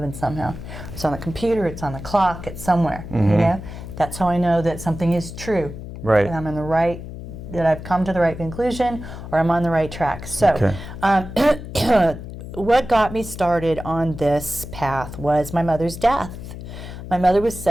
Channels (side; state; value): left; noise; hum, 11 dB below the sound